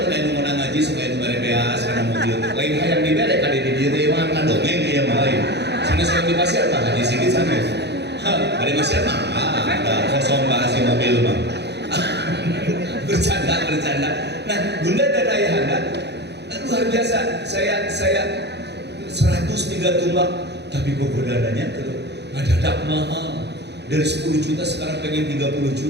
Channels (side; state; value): left; late; 0.49 ms